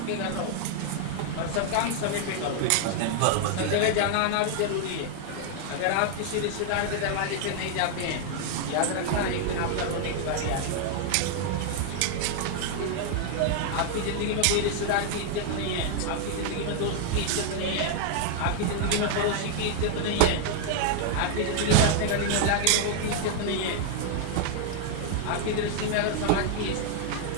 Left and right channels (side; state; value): both; different; correlation 0.00